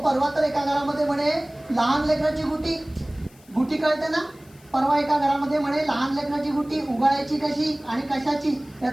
तर एका घरामध्ये म्हणे लहान लेकराची गुटी कळते ना, परवा एका घरामध्ये म्हणे लहान लेकराची गुटी उगाळायची कशी आणि कशाची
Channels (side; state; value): left; noise; hiss, 28 dB below the sound